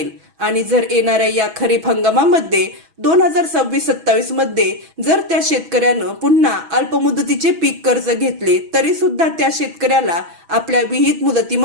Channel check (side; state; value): left; late; 6.2 ms